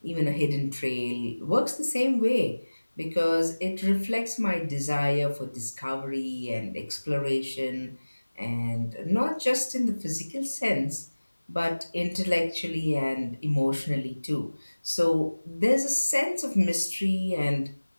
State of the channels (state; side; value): inverted; both; correlation -1.00